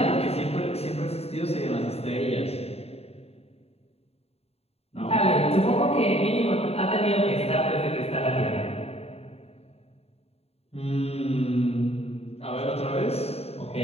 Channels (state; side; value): late; right; 0.29 ms